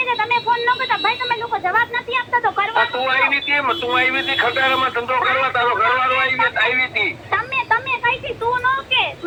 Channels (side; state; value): both; identical; correlation 1.00